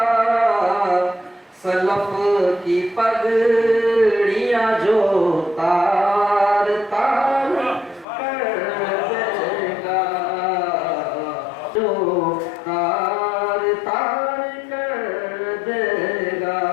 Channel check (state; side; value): drops out; right; at 8.1 s